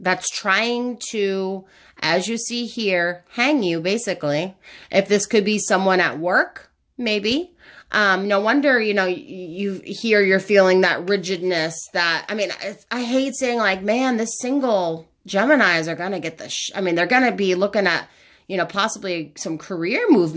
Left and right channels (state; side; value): identical; both; correlation 1.00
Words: trying to, as you see here, hang you, basically. If this could be someone at work, maybe. No wonder, you're feeling that rigidness that, I hate saying man, this single Geminis are going to get they're going to be looking at, possibly some career